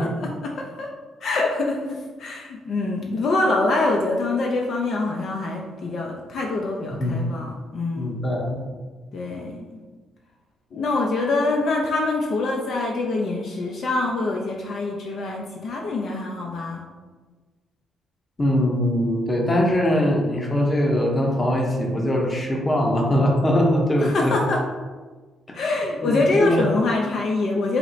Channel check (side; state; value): both; normal; correlation 0.77